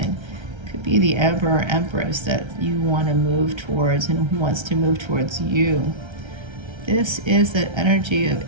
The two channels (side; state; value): left; late; 1.3 ms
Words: It could be the Emperor or Empress that you want to move towards and who wants to move towards you. This is the energy of